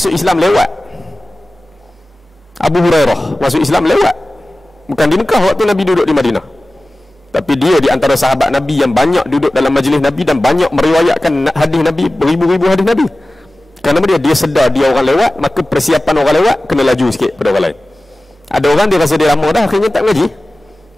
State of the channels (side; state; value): both; normal; correlation 0.96